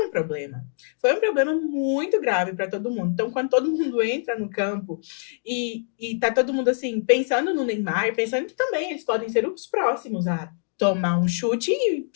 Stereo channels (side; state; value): right; silent; digital silence